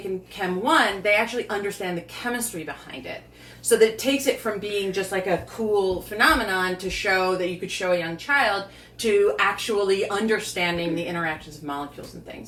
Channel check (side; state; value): both; identical; correlation 1.00